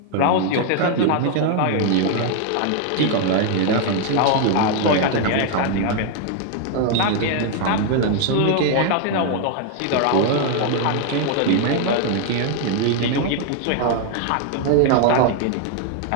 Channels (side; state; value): both; different; correlation 0.00